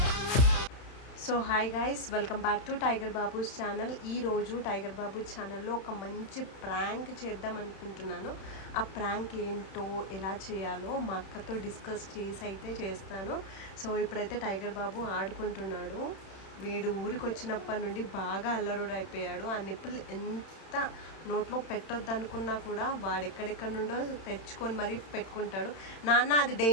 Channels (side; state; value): right; late; 31 ms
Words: So hi guys, welcome back to Tiger Babu's channel. ఈరోజు టైగర్ బాబూ ఛానల్లో ఒక మంచి ప్రాంక్ చేద్దాం అనుకుంటున్నాను. ఆ ప్రాంక్ ఏంటో ఎలా చేయాలో మా అక్కతో డిస్కస్ చేసి అయితే చేస్తాను. సో ఇప్పుడైతే టైగర్ బాబు ఆడుకుంటున్నాడు. వీడు ఊరికి వచ్చినప్పటి నుండి బాగా అల్లరుడు అయిపోయాడు. ఆ నిప్పులు ఎంత నోట్లో పెట్టొద్దు అనుకున్నా కూడా వాడెక్కడెక్కడ నుండో తెచ్చుకొని మరీ పెట్టుకుంటాడు. నాన్న అది